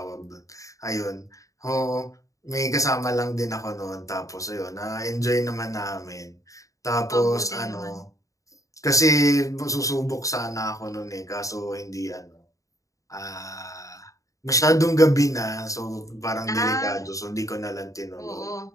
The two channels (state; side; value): late; right; 0.16 ms